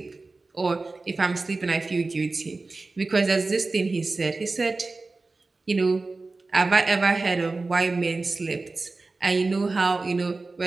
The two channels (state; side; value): quieter; left; 3.6 dB